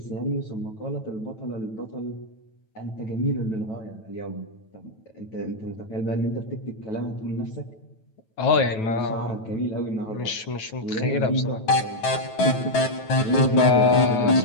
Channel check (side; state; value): right; late; 9.2 ms